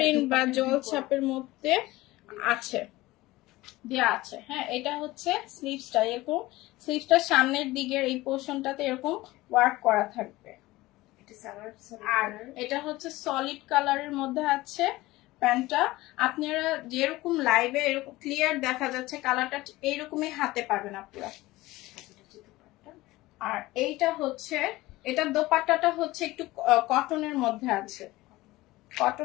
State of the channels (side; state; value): right; quieter; 18.8 dB